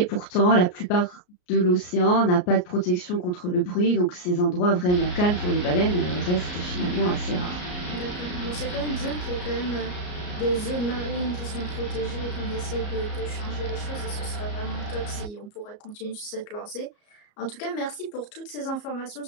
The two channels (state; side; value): late; right; 34 ms